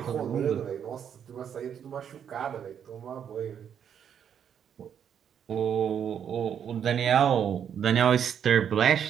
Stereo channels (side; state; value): left; quieter; 8.5 dB